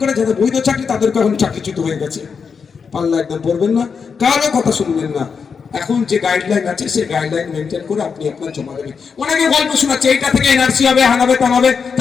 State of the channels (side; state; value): right; quieter; 5.9 dB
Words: করে যাদের বৈধ চাকরি, তাদেরকে এখন চাকরিচ্যুত হয়ে গেছে, পাল্লা একদম পড়বেন না, কারো কথা শুনবেন না। এখন যে গাইডলাইন আছে, সেই গাইডলাইন মেনটেন করে আপনি আপনার জমা দেবেন। অনেকে গল্প শোনাচ্ছে, এইটা থেকে এনআরসি হবে, হানাবে টানাবে,